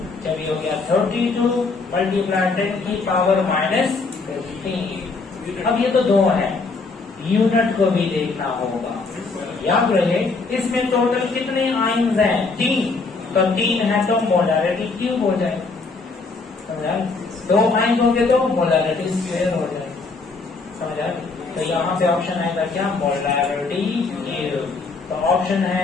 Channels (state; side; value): quieter; right; 4.1 dB